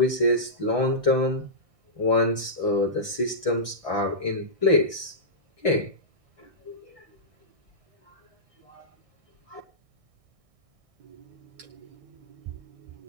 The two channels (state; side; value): late; left; 1.6 ms